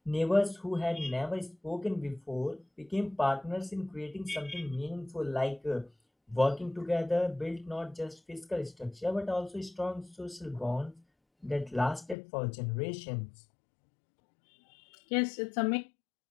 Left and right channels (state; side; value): drops out; right; at 12.2 s